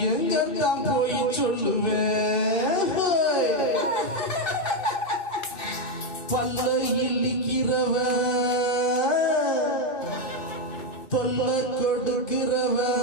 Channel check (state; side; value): late; right; 2.6 ms